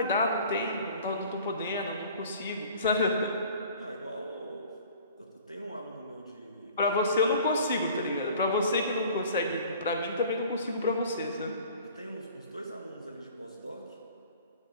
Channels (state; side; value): inverted; both; correlation -0.48